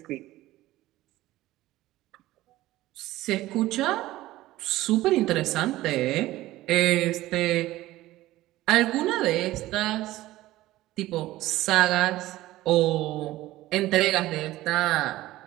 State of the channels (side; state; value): left; quieter; 16.5 dB